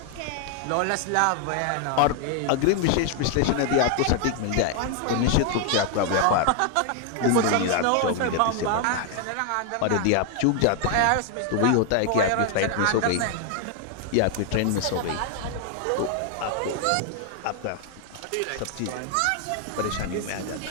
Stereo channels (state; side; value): different; both; correlation 0.00